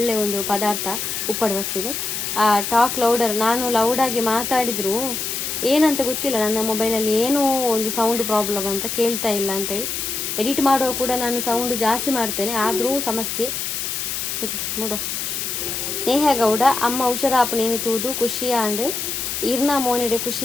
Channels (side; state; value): left; noise; hiss, 3 dB below the sound